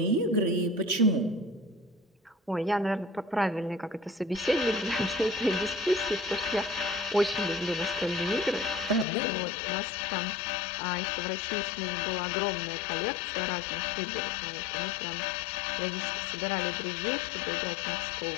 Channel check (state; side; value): drops out; right; at 9.1 s